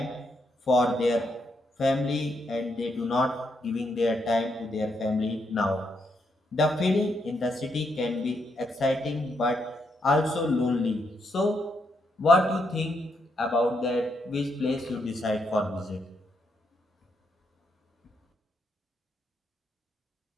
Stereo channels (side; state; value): both; normal; correlation 0.78